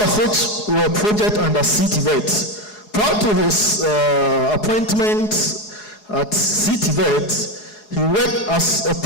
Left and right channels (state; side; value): late; right; 4.8 ms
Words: of which were projects under CTVET. Prior to his appointment at CTVET, he worked as a